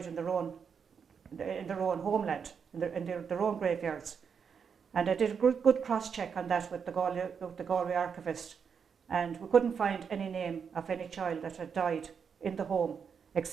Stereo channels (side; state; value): left; quieter; 6.6 dB